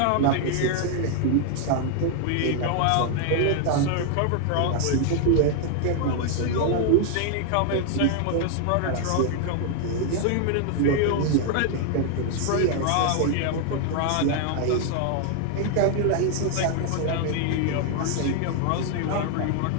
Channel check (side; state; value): both; different; correlation 0.00